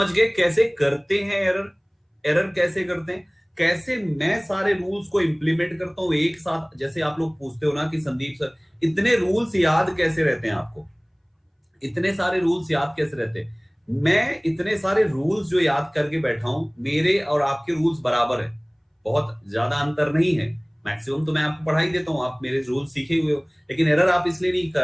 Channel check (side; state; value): both; identical; correlation 1.00